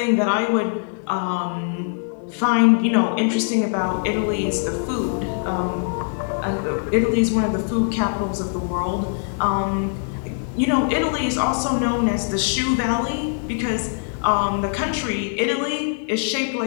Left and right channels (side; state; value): right; silent; 64 dB below the other